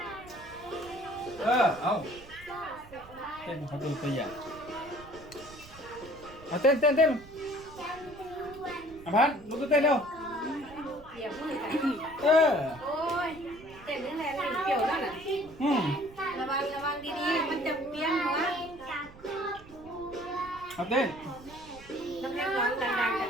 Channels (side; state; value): right; noise; rumble, 20 dB below the sound